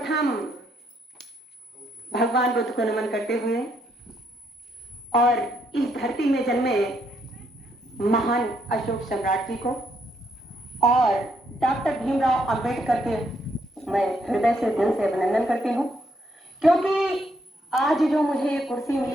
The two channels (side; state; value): both; normal; correlation 0.74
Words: भगवान बुद्ध को नमन करते हुए और इस धरती में जन्मे महान अशोक सम्राट जी को और डॉक्टर भीमराव अंबेडकर के मैं हृदय से दिल से अभिनंदन करती हूँ, क्योंकि आज जो मुझे ये कुर्सी